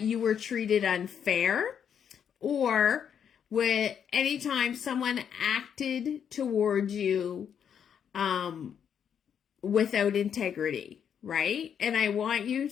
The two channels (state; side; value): quieter; right; 8.1 dB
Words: were treated unfair or with any time someone acted towards you without integrity, right? And I want you